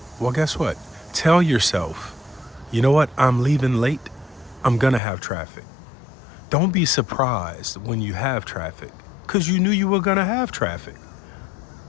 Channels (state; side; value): drops out; right; at 5.0 s